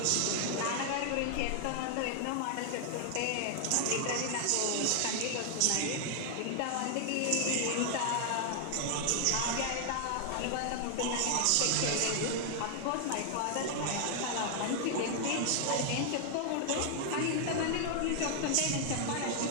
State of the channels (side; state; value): both; different; correlation 0.00